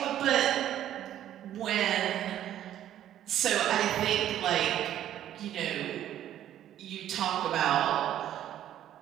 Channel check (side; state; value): left; quieter; 11.6 dB